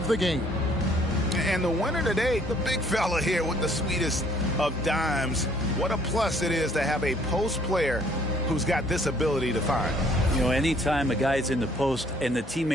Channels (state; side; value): normal; both; correlation 0.61